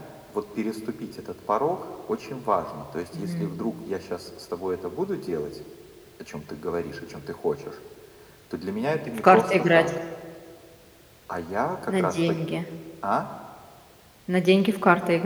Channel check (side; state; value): both; identical; correlation 1.00